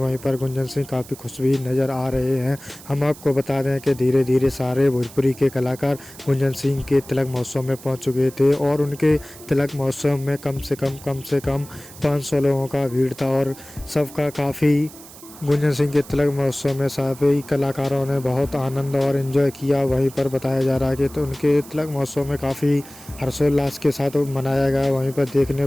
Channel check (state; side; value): noise; right; hiss, 18 dB below the sound